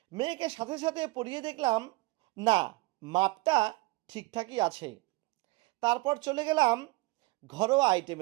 মেয়েকে সাথে সাথে পরিয়ে দেখলাম না, মাপটা ঠিকঠাকই আছে। তারপর চলে গেলাম ঘরোয়া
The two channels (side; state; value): left; quieter; 22.6 dB